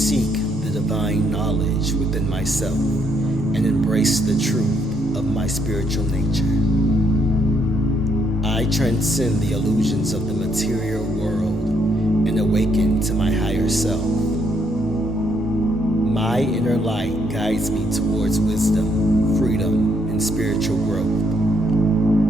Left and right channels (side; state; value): both; normal; correlation 0.72